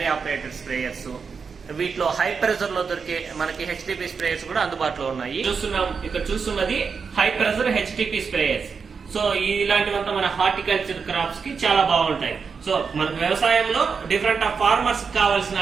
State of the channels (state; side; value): quieter; left; 5.6 dB